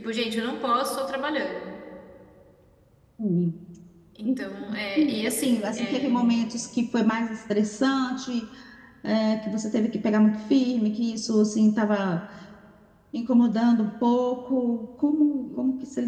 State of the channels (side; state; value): both; identical; correlation 1.00